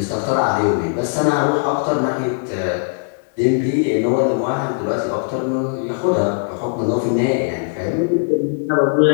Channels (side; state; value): right; silent; 66 dB below the other